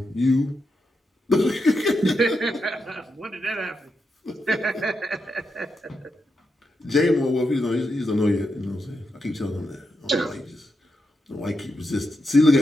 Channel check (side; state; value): both; normal; correlation 0.85